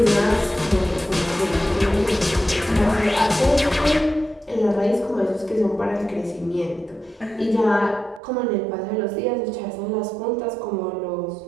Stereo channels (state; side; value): drops out; left; at 8.2 s